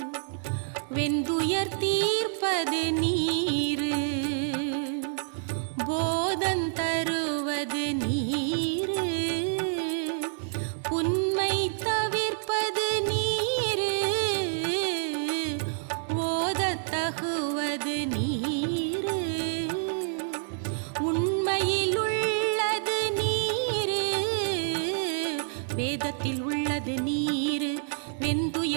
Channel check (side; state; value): left; silent; 58 dB below the other